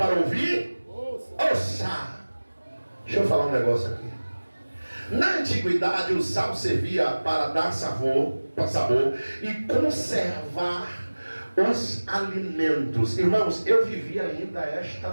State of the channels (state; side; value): inverted; both; correlation -1.00